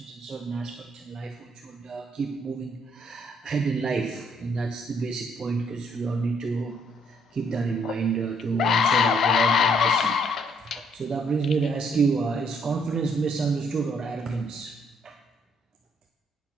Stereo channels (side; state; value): both; normal; correlation 0.68